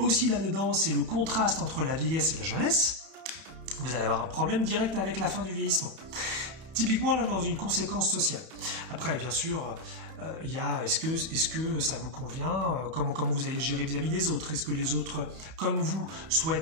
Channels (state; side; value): late; left; 31 ms